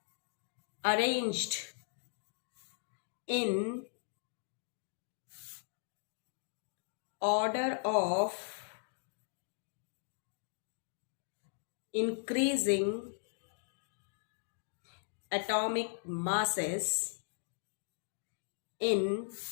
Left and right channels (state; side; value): silent; right; digital silence